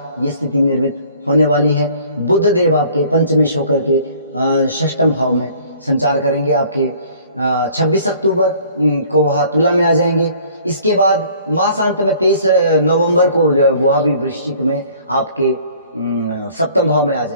ये स्थिति निर्मित होने वाली है। बुध देव आपके पंचमेश होकर के षष्ठम भाव में संचार करेंगे, आपके 26 अक्टूबर को वह तुला में आ जाएंगे। इसके बाद मासांत में 23 नवंबर को जो है वह भी वृश्चिक में आपके सप्तम भाव में आ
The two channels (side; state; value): both; inverted; correlation -0.54